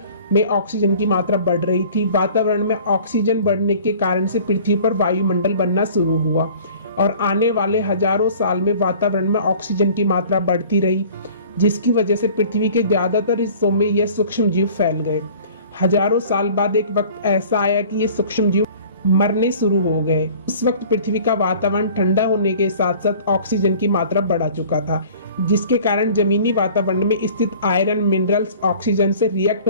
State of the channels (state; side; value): inverted; both; correlation -0.48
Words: में ऑक्सीजन की मात्रा बढ़ रही थी। वातावरण में ऑक्सीजन बढ़ने के कारण से पृथ्वी पर वायुमंडल बनना शुरू हुआ और आने वाले हजारों साल में वातावरण में ऑक्सीजन की मात्रा बढ़ती रही, जिसकी वजह से पृथ्वी के ज्यादातर हिस्सों में यह सूक्ष्म जीव फैल गए। हजारों साल बाद एक वक्त ऐसा आया कि ये सूक्ष्म जीव मरने शुरू हो गए। उस वक्त पृथ्वी का वातावरण ठंडा होने के साथ साथ ऑक्सीजन की मात्रा बढ़ा चुका था, जिसके कारण जमीनी वातावरण में स्थित आयरन, मिनरल्स ऑक्सीजन से रिएक्ट